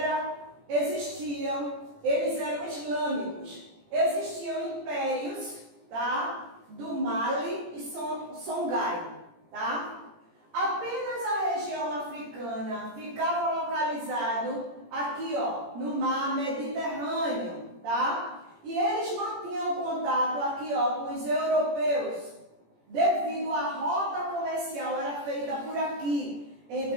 eles eram islâmicos. Existiam impérios, tá? Do Mali e Songhai, tá? Apenas a região africana ficava localizado aqui, ó, no mar Mediterrâneo, tá? E eles mantinham contato aqui, ó, com os europeus, devido à rota comercial era feita por aqui,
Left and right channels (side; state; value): left; late; 17 ms